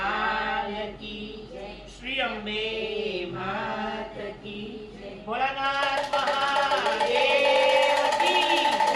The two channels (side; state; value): both; identical; correlation 1.00